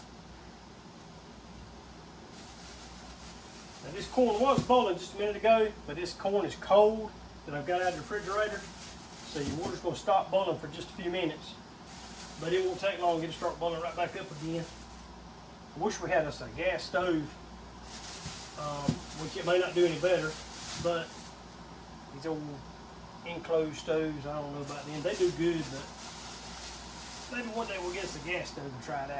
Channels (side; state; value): both; identical; correlation 1.00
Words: Now this corn was boiling just a minute ago, but this corn is cold that I've got out of the refrigerator. So your water's going to stop boiling for just a few minutes. But it won't take long to get it start boiling right back up again. I wish we had us a gas stove, which it may not do any better, but these old enclosed stoves, I don't know about them. They do good, but maybe one day we'll get us a gas stove and try it